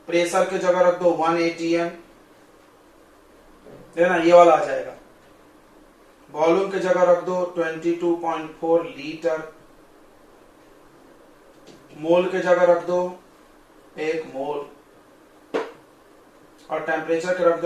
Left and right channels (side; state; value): both; identical; correlation 1.00